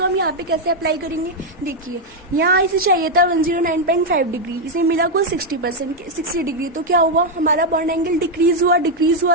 हम यहाँ पे कैसे अप्लाई करेंगे, देखिए यहाँ इसे चाहिए था 109.5 डिग्री, इसे मिला कुल 60 डिग्री। तो क्या हुआ, हमारा बॉन्ड एंगल डिक्रीज हुआ,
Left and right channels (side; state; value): both; normal; correlation 0.01